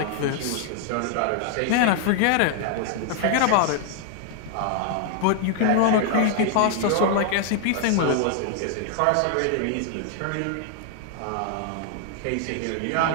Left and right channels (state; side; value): different; both; correlation 0.00